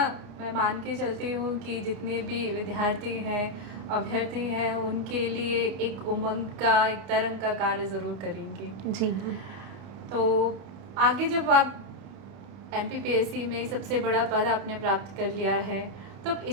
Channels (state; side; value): late; left; 31 ms